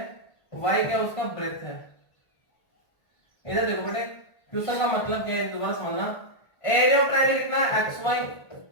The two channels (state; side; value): late; right; 1.4 ms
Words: वाई क्या उसका? ब्रेथ है। इधर देखो बेटे क्वेश्चन का मतलब क्या है, दोबारा समझना। एरिया ऑफ ट्रायंगल कितना है? एक्स वाई